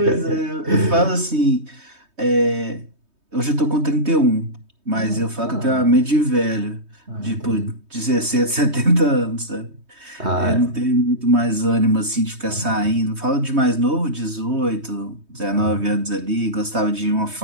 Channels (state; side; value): late; left; 3.2 ms